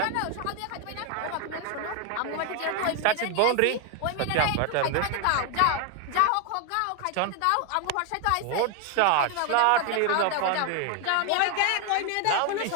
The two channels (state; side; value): different; both; correlation 0.01